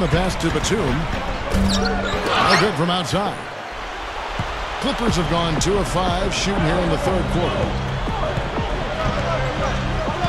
pass to Batum. No good from outside. Clippers have gone 2 of 5 shooting here in the third quarter.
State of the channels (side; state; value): both; identical; correlation 1.00